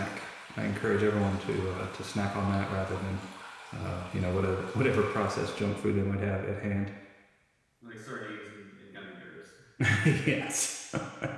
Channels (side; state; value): both; identical; correlation 1.00